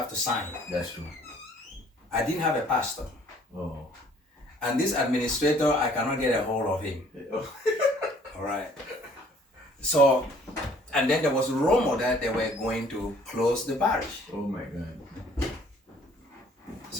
to sign. That's true. I didn't have a pastor. Oh. And this administrator, I cannot get a hold of him. Oh. All right. So, and then there was a rumor that they were going to close the parish. Oh my God.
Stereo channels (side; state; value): both; normal; correlation 0.58